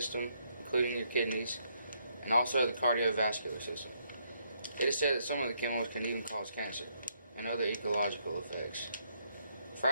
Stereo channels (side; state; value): both; inverted; correlation -0.74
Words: including your kidneys, and also the cardiovascular system. It is said that some of the chemicals can even cause cancer and other ecological effects.